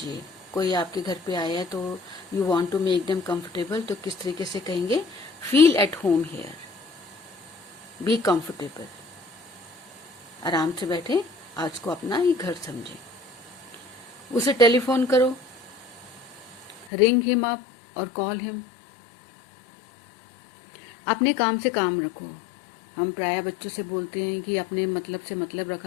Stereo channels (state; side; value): drops out; right; at 16.9 s